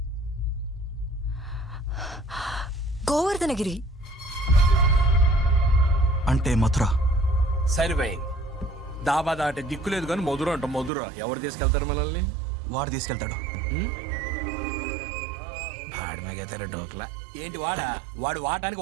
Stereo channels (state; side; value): drops out; left; at 10.9 s